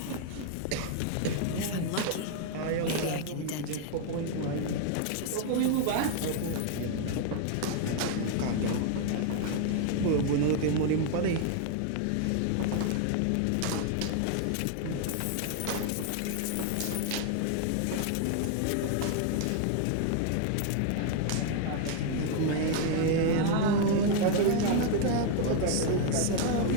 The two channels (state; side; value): different; both; correlation 0.00